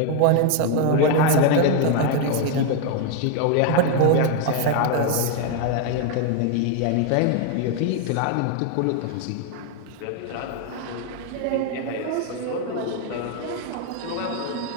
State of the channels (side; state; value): both; different; correlation 0.00